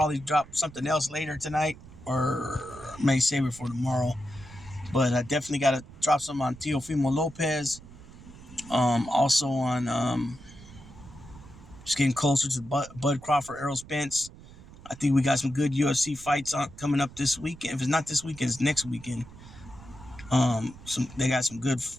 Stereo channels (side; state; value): right; noise; rumble, 19 dB below the sound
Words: drop something else later tonight, or may save it for tomorrow. But I definitely got to drop some on Teofimo Lopez. Also on just getting closer to Bud Crawford, Errol Spence. I think we got some good UFC fights coming up this weekend. If it's not this weekend, it's next weekend. They got